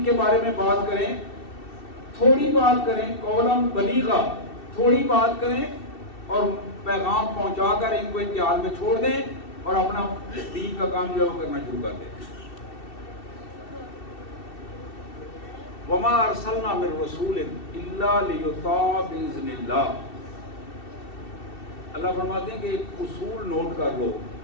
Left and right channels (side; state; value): right; late; 2.7 ms